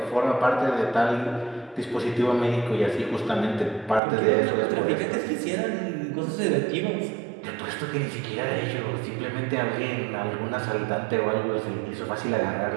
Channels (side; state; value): left; drops out; at 4.0 s